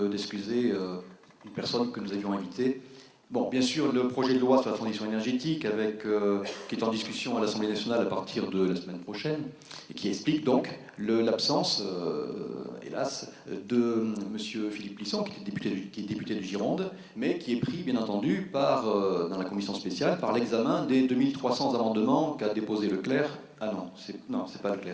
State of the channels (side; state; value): both; identical; correlation 1.00